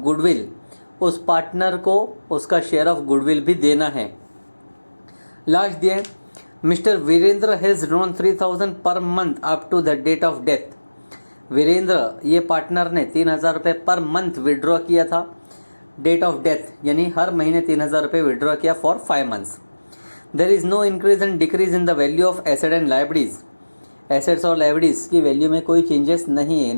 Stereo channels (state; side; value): inverted; both; correlation -1.00